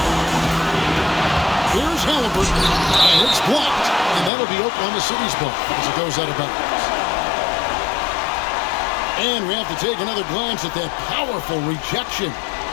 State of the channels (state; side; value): drops out; right; at 4.3 s